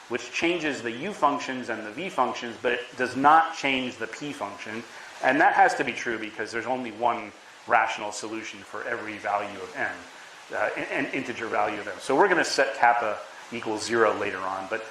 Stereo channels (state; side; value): identical; both; correlation 1.00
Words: which changes the u functions and the v functions, but it does not change the p function. And that has to be true because there's only one rational solution for every value of m, an integer value of m. So we're going to set kappa equals 0 later on.